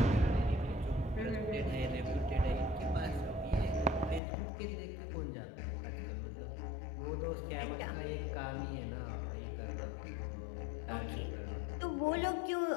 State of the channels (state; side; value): drops out; right; at 4.2 s